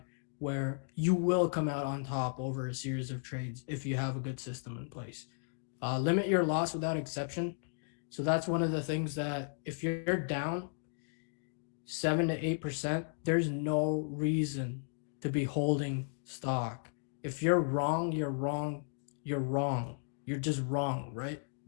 where you will come out on top over a series of trades if you have a good system in place. Limit your loss without exception. So that's one of the things that if you're down 7 to 8%, there's no reason to be holding stock. If you're wrong, you're wrong, you're wrong. You're just wrong, right?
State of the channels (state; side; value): silent; right; digital silence